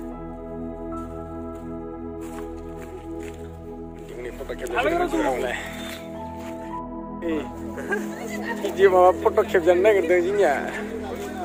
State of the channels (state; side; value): identical; both; correlation 1.00